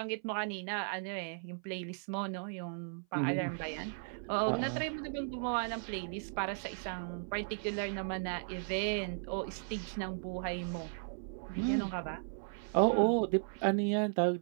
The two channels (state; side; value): silent; left; 54 dB below the other